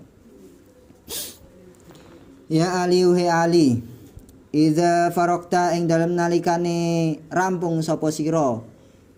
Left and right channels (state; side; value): identical; both; correlation 1.00